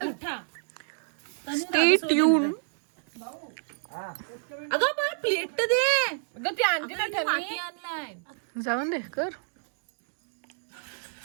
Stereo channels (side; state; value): left; silent; digital silence